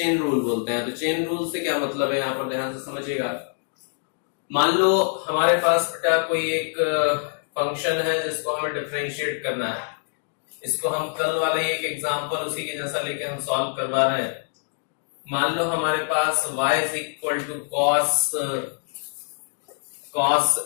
रूल बोलते हैं। तो चेन रूल से क्या मतलब है, यहां पर ध्यान से समझिएगा। मान लो हमारे पास बेटा कोई एक फंक्शन है जिसको हमें डिफरेंशिएट करना है। इसको हम कल वाले एक एग्जांपल उसी के जैसा लेके हम सॉल्व करवा रहे हैं। मान लो हमारे पास y is equal to cos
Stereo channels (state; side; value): silent; right; 62 dB below the other